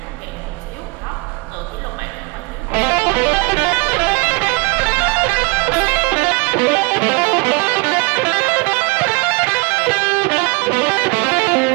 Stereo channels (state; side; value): quieter; left; 29.0 dB